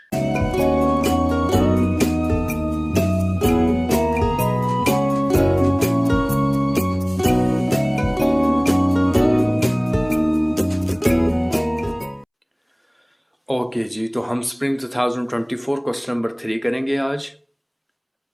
Okay ji, तो हम स्प्रिंग 2024 क्वेश्चन नंबर 3 करेंगे आज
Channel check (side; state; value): both; identical; correlation 1.00